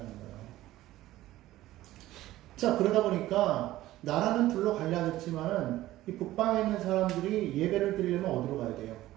자, 그러다 보니까 나라는 둘로 갈라졌지만은 이 북방에 있는 사람들이 예배를 드리려면 어디로 가야 돼요?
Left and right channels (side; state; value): left; quieter; 15.6 dB